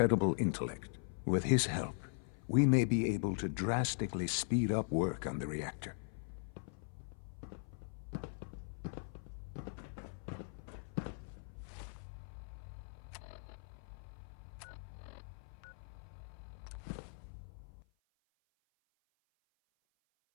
intellect. With his help, we may be able to drastically speed up work on the reactor.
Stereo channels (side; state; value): right; silent; 51 dB below the other